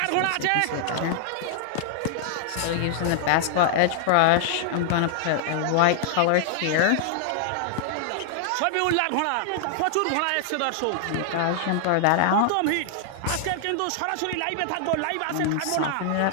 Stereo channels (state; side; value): different; both; correlation -0.01